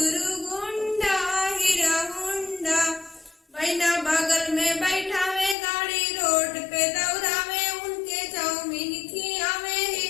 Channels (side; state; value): right; drops out; at 5.6 s